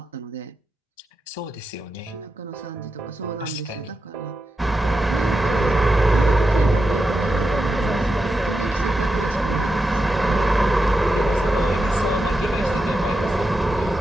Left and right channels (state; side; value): normal; both; correlation 0.88